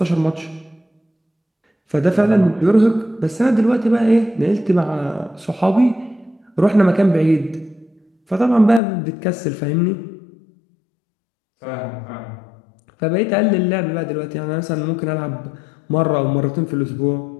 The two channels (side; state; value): right; drops out; at 8.8 s